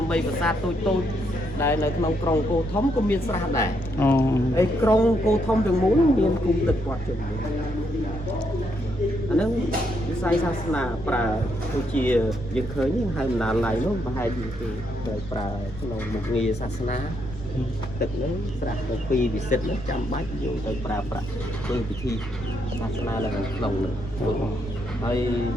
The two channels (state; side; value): noise; left; rumble, 14 dB below the sound